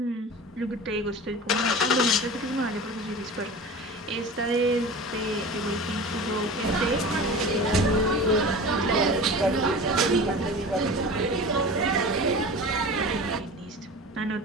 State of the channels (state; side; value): normal; both; correlation 0.35